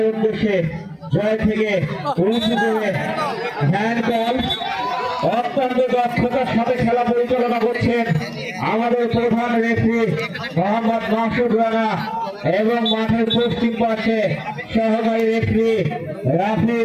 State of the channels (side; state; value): both; identical; correlation 1.00